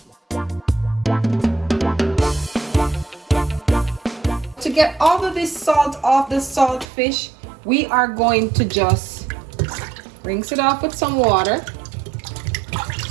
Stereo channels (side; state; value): left; drops out; at 6.9 s